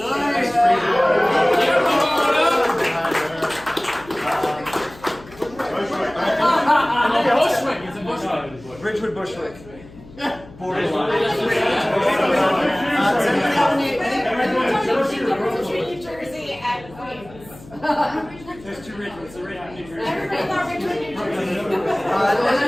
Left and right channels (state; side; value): noise; left; hum, 20 dB below the sound